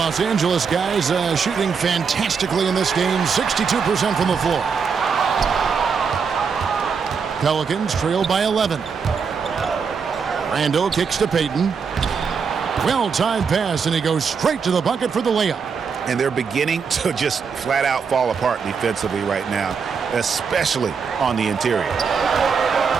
Angeles guys shooting fantastically in this game. 62% from the floor. Pelicans trail by 11. Randall kicks to Payton. Well-timed pass, and he goes straight to the bucket for the layup. And they're beginning to just flat out fall apart defensively right now, especially on the interior.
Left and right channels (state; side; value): quieter; left; 5.9 dB